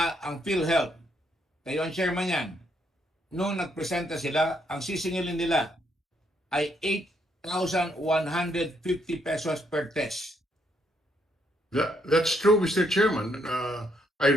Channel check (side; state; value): both; normal; correlation 0.73